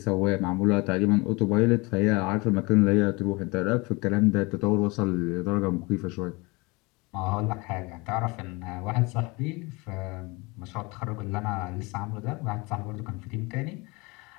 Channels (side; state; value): right; quieter; 25.9 dB